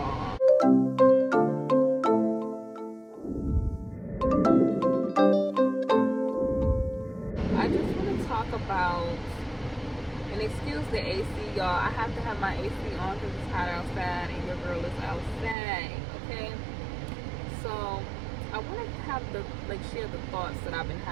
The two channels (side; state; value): left; drops out; at 15.6 s